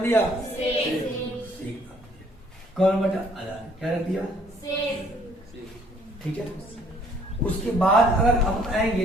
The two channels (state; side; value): normal; both; correlation 0.61